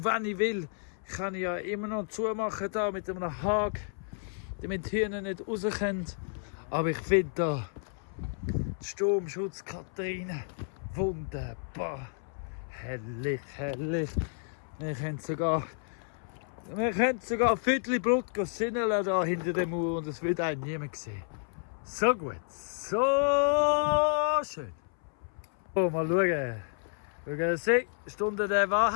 wenn ich will, kann ich ja immer noch zumachen da mit einem Haken, damit die Hühner nicht raus können. Aber ich finde da den Sturmschutz Katharina wunderbar. Herrlich, herrlich. Wir können sogar ein Viertel Blut sinneln da hinter der Mauer und es wird einen niemand sehen. So gut, so schön. So, mal schauen. We're gonna see. Stunde der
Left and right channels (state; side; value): silent; right; 57 dB below the other